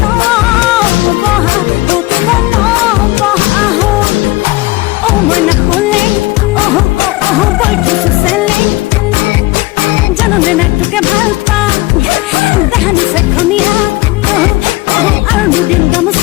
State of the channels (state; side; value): quieter; right; 20.5 dB